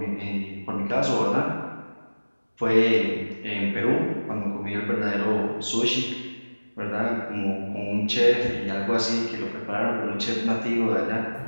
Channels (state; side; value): inverted; both; correlation -1.00